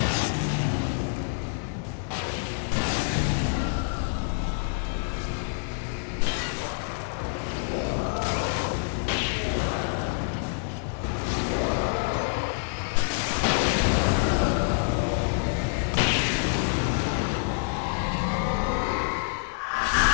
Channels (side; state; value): right; silent; digital silence